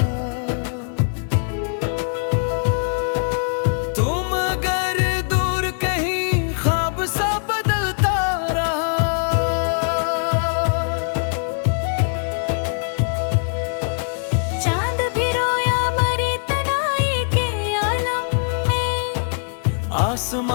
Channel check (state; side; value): silent; right; digital silence